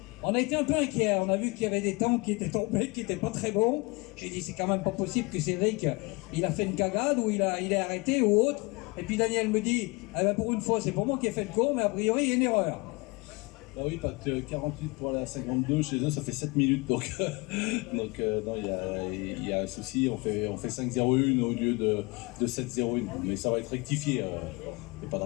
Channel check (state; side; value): quieter; right; 26.7 dB